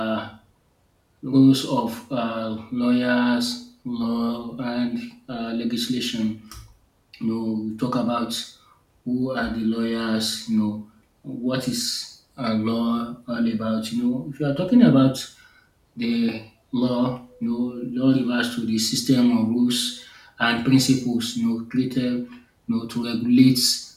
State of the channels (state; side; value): identical; both; correlation 1.00